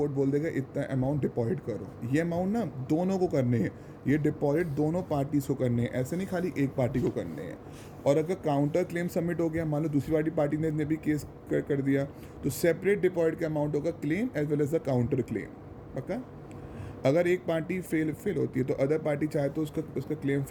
बोल देगा इतना अमाउंट डिपॉजिट करो। ये अमाउंट ना दोनों को करने हैं, ये डिपॉजिट दोनों पार्टीज को करने हैं, ऐसे नहीं खाली एक पार्टी को करने हैं। और अगर काउंटर क्लेम सबमिट हो गया, मान लो दूसरी वाली पार्टी ने भी केस कर दिया, तो सेपरेट डिपॉजिट का अमाउंट होगा claim as well as the counter claim. पक्का? अगर एक पार्टी फेल होती है तो अदर पार्टी चाहे तो उसका क्लेम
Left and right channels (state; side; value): identical; both; correlation 1.00